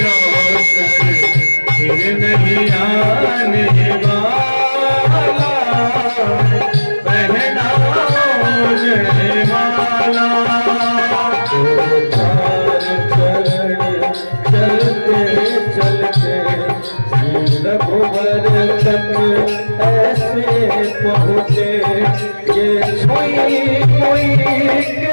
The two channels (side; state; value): both; inverted; correlation -1.00